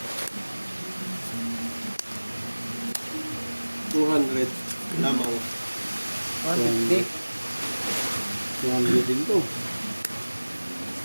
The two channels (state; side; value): inverted; both; correlation -1.00